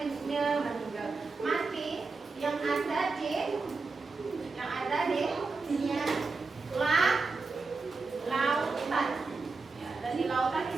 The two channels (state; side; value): quieter; left; 4.1 dB